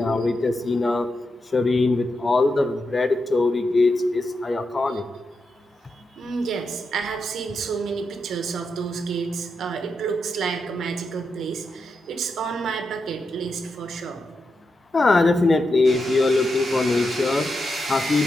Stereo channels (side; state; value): both; normal; correlation 0.86